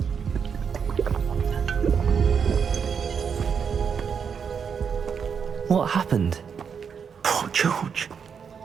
What happened? Poor George.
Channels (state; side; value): quieter; left; 6.7 dB